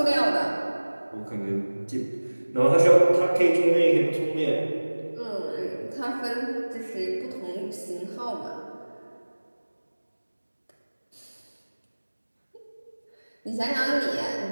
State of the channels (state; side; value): inverted; both; correlation -1.00